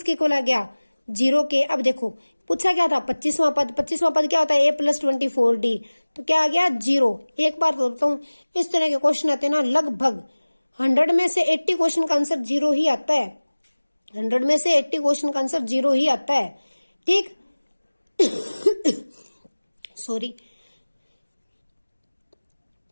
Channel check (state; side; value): inverted; both; correlation -1.00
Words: इक्वल आ गया 0 के। अब देखो पूछा क्या था 25वां पद, 25वां पद क्या होता है a प्लस 24d, तो क्या आ गया 0। एक बार तो बताऊं इस तरह के क्वेश्चन आते हैं ना लगभग 100 में से 80 क्वेश्चन का आंसर 0 ही आता है, 100 में से 80 क्वेश्चन का आंसर 0 ही आता है, ठीक। सॉरी।